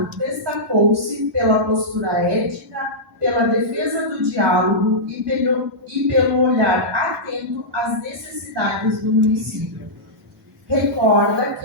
destacou-se pela postura ética, pela defesa do diálogo e pelo olhar atento às necessidades do município. Recorda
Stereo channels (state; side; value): normal; both; correlation -0.13